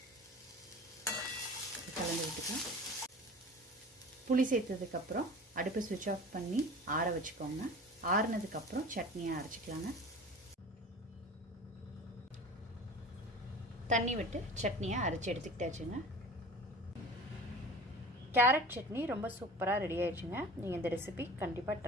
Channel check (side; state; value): both; normal; correlation 0.39